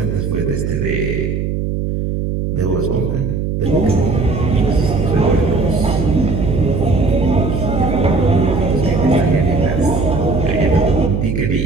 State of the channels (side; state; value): right; noise; hum, 2 dB below the sound